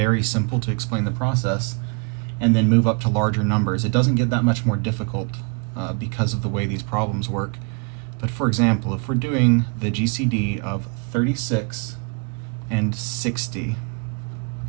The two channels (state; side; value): quieter; left; 35.3 dB